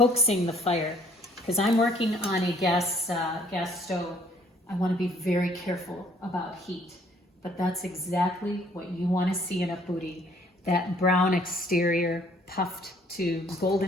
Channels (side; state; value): both; normal; correlation 0.60